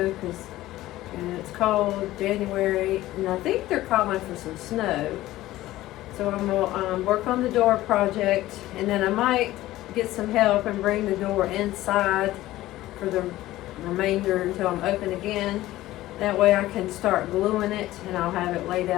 because it's cold, January, and I think they're calling for some snow. So I'm going to work on the door project, and then I might get some help and bring the door inside for the remainder until I'm open again. That way I can start gluing it, and I'll have it laid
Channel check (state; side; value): quieter; right; 15.9 dB